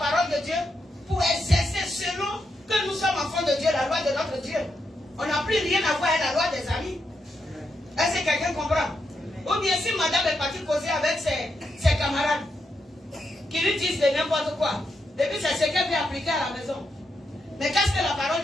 de Dieu pour exercer selon que nous sommes enfants de Dieu, la loi de notre Dieu. On n'a plus rien à voir avec la loi des amis. Est-ce que quelqu'un comprend? Ou bien si madame est partie causer avec ses camarades qui lui disent de n'importe quoi, et puis c'est ce qu'elle veut appliquer à la maison. Mais qu'est-ce que la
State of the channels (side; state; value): both; normal; correlation 0.82